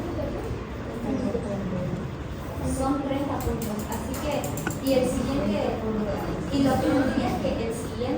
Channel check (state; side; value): identical; both; correlation 1.00